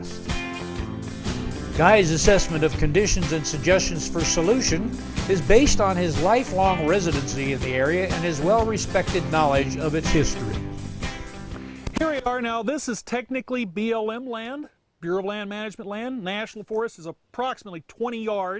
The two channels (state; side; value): identical; both; correlation 1.00